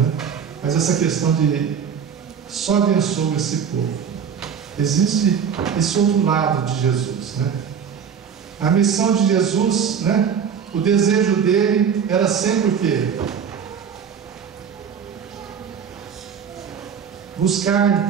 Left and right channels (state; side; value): quieter; left; 7.2 dB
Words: Mas essa questão de só abençoa esse povo. Existe esse outro lado de Jesus, né? A missão de Jesus, né? O desejo dele era sempre o quê? Buscar